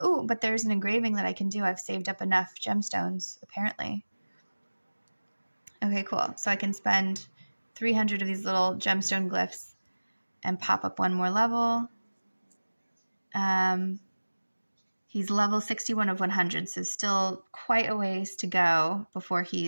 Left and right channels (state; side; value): inverted; both; correlation -1.00